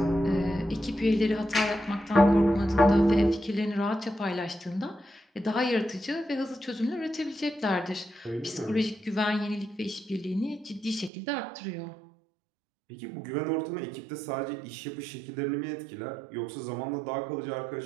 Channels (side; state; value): left; drops out; at 11.1 s